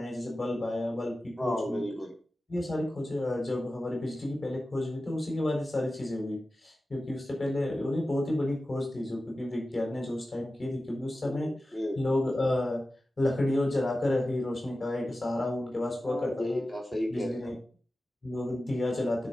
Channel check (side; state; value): both; normal; correlation 0.94